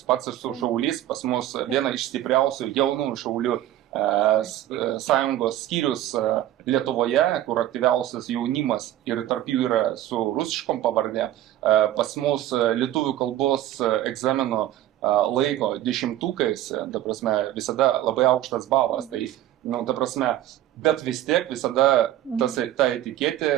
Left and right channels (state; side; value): quieter; left; 13.1 dB